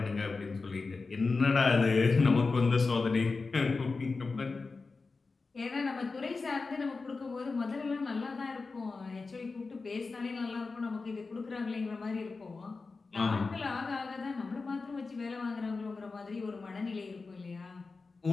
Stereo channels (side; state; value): right; quieter; 4.1 dB